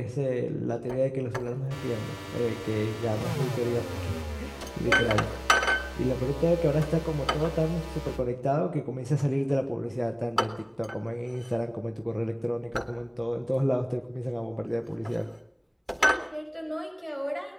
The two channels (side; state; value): both; identical; correlation 1.00